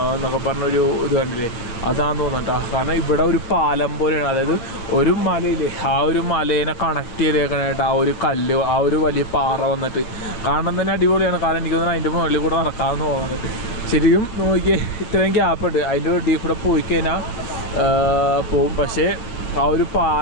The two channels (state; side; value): late; right; 8.6 ms